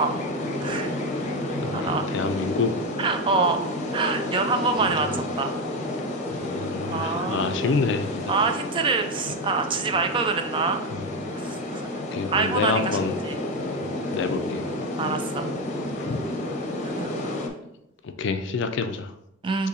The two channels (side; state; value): both; normal; correlation 0.13